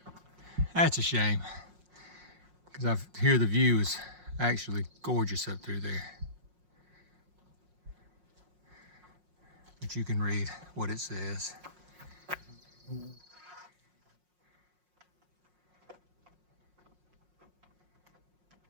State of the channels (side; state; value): left; late; 5.5 ms